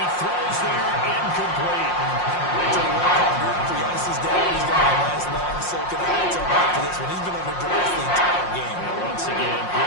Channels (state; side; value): late; right; 5.6 ms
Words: throws there, incomplete. He has his down. He's got a nice long soaking high toe back to this one. He's been under duress the entire game. And once again,